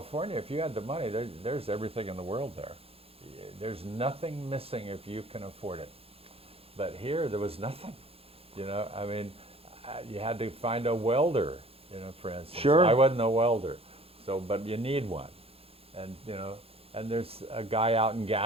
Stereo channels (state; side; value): late; left; 0.28 ms